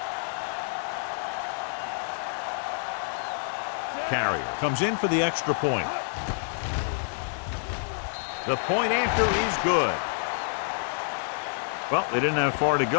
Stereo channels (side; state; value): right; silent; digital silence